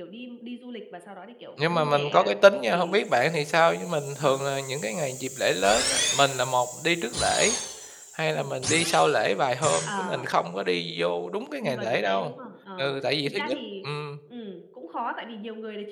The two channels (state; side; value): identical; both; correlation 1.00